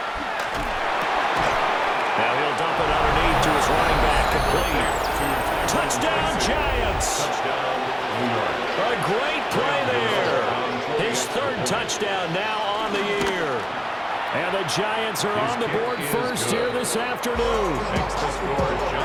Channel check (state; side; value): identical; both; correlation 1.00